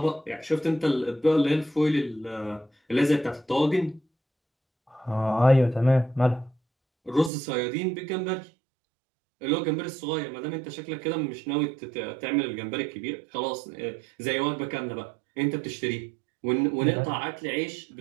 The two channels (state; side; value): drops out; left; at 7.3 s